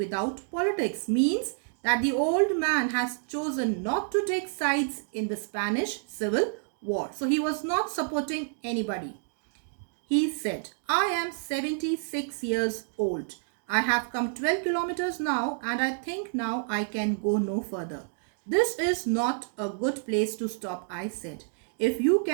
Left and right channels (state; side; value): silent; left; digital silence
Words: politics, means that the old man has chosen not to take sides in the Spanish Civil War. So he was not supporting anybody. He said, I am 76 years old. I have come 12 kilometers now, and I think now I can go no further. This is not a good place to stop, I said. If you